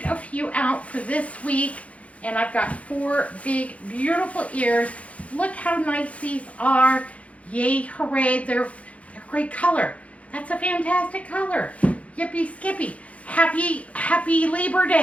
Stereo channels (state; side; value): late; right; 0.065 ms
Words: a few out for this week, and I've got 4 big, beautiful ears. Look how nice these are. Yay, hooray, they're great color. That's a fantastic color. Yippee skippy. Happy Labor